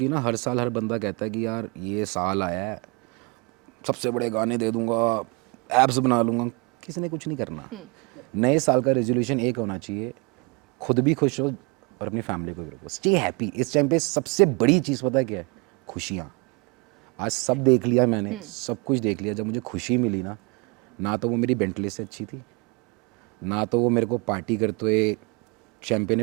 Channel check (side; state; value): left; quieter; 29.5 dB